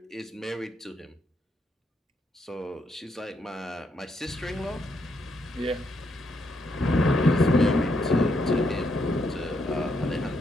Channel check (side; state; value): both; normal; correlation 0.77